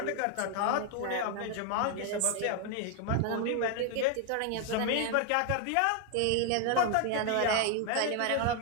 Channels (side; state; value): both; different; correlation 0.00